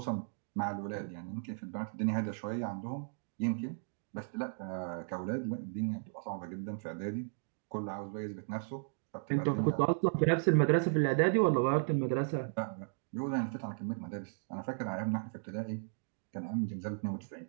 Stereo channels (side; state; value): left; silent; digital silence